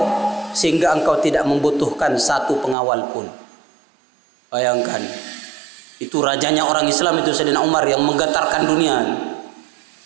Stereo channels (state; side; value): drops out; left; at 2.8 s